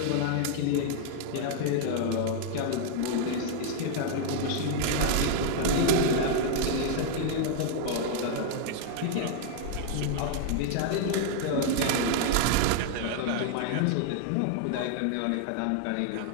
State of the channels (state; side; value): different; both; correlation 0.00